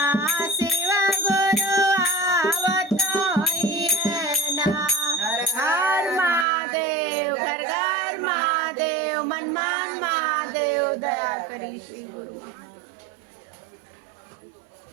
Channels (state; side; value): drops out; left; at 6.5 s